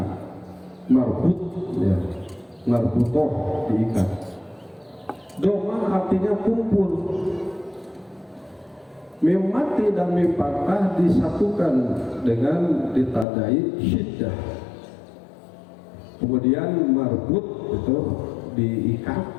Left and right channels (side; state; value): right; drops out; at 13.2 s